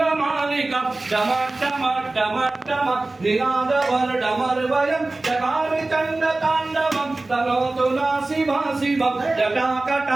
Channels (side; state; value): left; quieter; 3.1 dB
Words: डमट्टमट्टमट्टम निनादवर्डमर्वयं चकारिचण्डताण्डवं तनोतु नासिभा शिवं